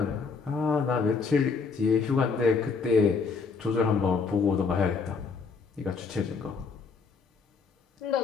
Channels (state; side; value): quieter; right; 5.0 dB